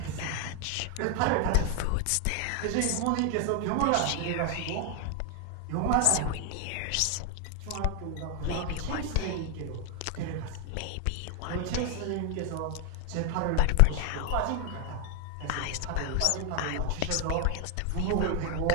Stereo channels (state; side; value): different; both; correlation 0.00